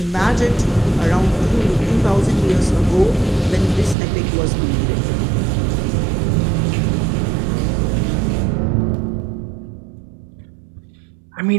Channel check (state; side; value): drops out; left; at 4.0 s